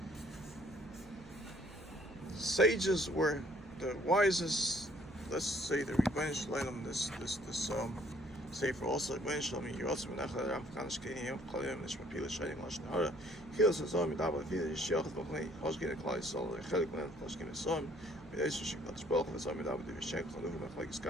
Sages were the wisest. Let's say the Rebbeinu Shalom, this Sefer also Rebbeinu Shalom, Yerotz Menachal Ram Kanish Kiyam Chalim Nishmapil Shayim Lashon Hara Chil Sazom Midaba Vida Yishiach B'Chnei Hoshkin Klal Yisrael Chelik Men Hoshkin Yisrael B'Yis Shikvat Shbach V'Zom Midaba Divishen Chaluv Mechlek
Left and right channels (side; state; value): right; noise; hum, 20 dB below the sound